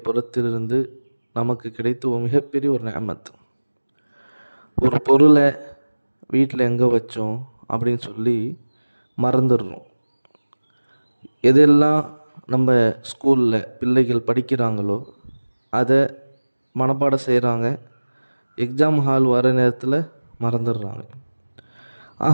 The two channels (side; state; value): both; inverted; correlation -1.00